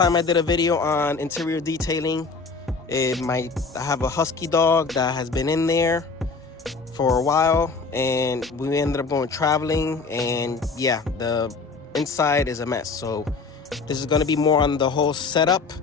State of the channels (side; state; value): right; quieter; 4.4 dB